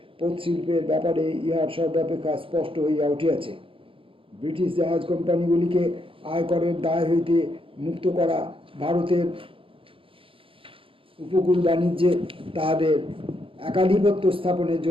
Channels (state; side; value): late; left; 0.26 ms